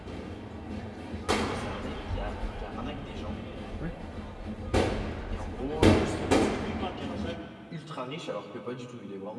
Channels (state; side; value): identical; both; correlation 1.00